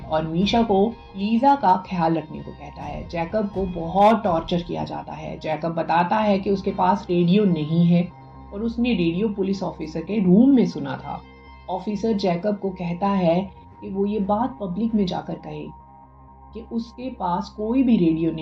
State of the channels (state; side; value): identical; both; correlation 1.00